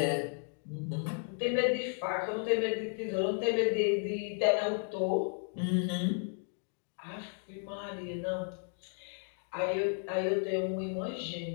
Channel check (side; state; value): right; silent; 55 dB below the other